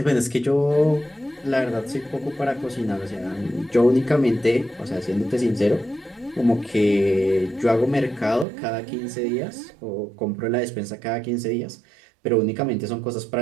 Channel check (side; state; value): left; drops out; at 8.5 s